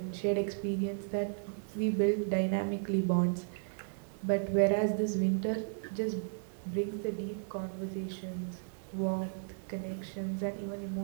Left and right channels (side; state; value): left; silent; digital silence